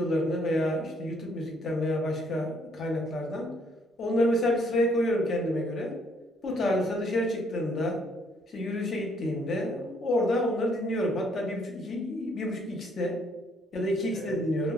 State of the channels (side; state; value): both; normal; correlation 0.67